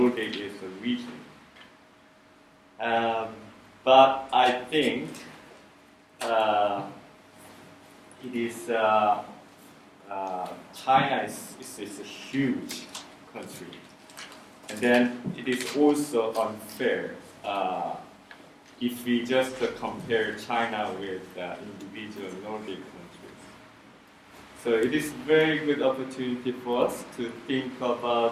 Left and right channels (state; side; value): identical; both; correlation 1.00